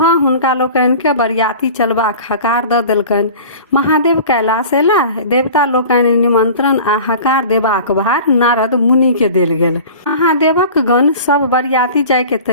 हुनका लोकनि के बरियाती चलबाक हकार दऽ देलकनि। महादेव कैलाश एला। देवता लोकनि निमंत्रण आ हकार देबाक भार नारद मुनि के देल गेल। महादेवक गण सब बरियाती जाय के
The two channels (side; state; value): both; inverted; correlation -0.40